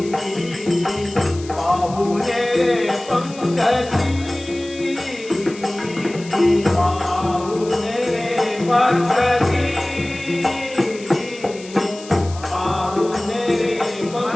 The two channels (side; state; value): left; noise; hiss, 18 dB below the sound